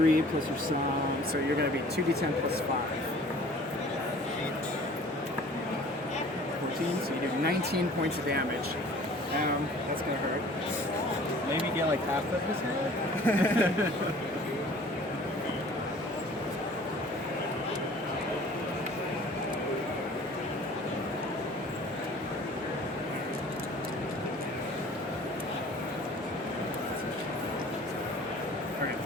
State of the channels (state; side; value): normal; both; correlation 0.49